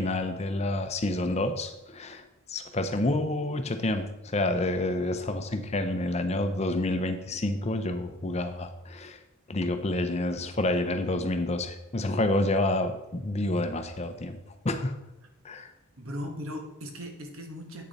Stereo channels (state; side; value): normal; both; correlation 0.52